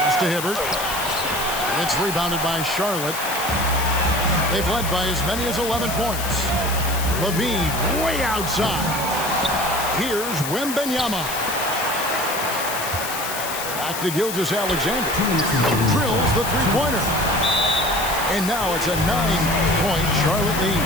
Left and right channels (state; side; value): noise; left; hiss, 6 dB below the sound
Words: to Hibbert. It's rebounded by Charlotte. They've led by as many as 11 points. Levine way outside. Here's Wembanyama. Back to Gilgeous-Alexander. Drills the three-pointer. And now it's a 9-point Charlotte lead.